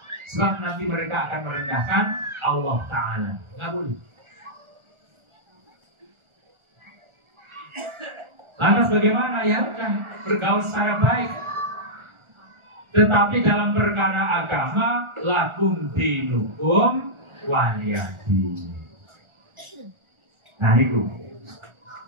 sebab nanti mereka akan merendahkan Allah Ta'ala. Nggak boleh. Lantas bagaimana? Ya udah, bergaul secara baik. Tetapi dalam perkara agama, lakum dinukum waliyadin. Nah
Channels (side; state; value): left; late; 1.4 ms